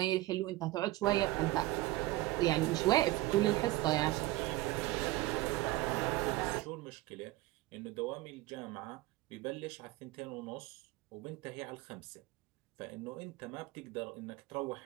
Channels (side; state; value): left; quieter; 17.8 dB